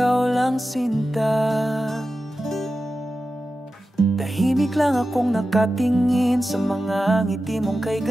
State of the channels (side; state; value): both; normal; correlation 0.93